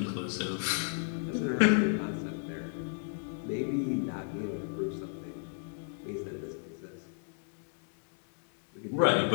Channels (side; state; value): right; silent; digital silence